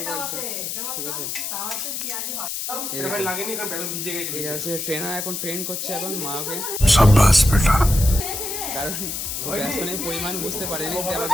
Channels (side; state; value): left; noise; hiss, 4 dB below the sound